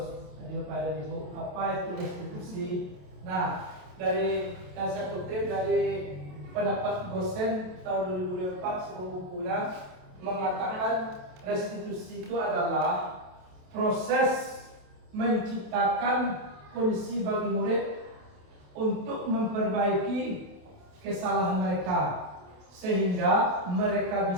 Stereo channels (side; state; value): left; late; 28 ms